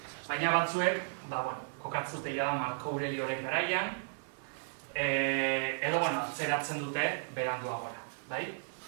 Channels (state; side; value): silent; left; 55 dB below the other